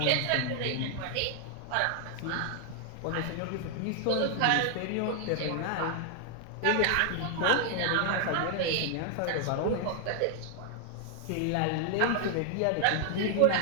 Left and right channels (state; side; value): different; both; correlation 0.00